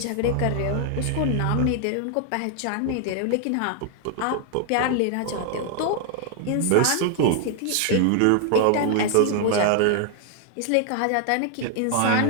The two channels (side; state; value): both; different; correlation 0.00